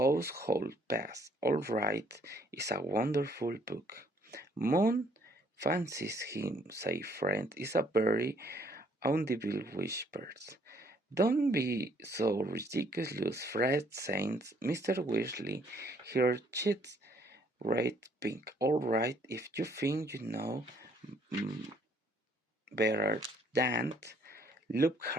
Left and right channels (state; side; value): normal; both; correlation 0.65